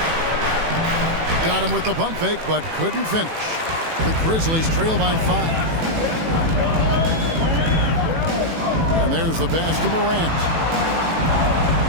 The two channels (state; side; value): late; left; 18 ms